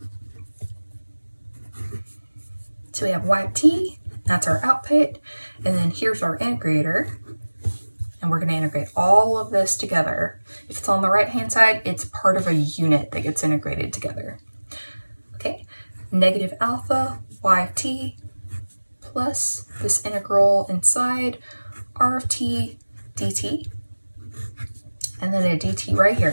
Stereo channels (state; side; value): inverted; both; correlation -1.00